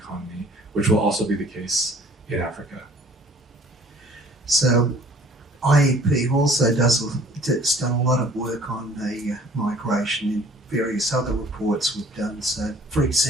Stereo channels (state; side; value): normal; both; correlation 0.53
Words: which will also be the case in Africa. So IEP also has done a lot of work on the migration in various other reports we've done. So, for